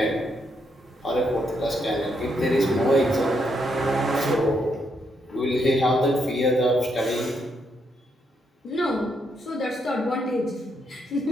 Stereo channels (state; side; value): normal; both; correlation 0.77